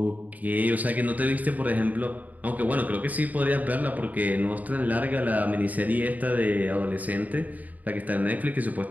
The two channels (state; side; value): late; left; 0.077 ms